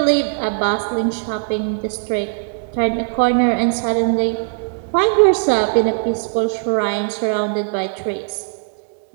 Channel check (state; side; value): silent; left; digital silence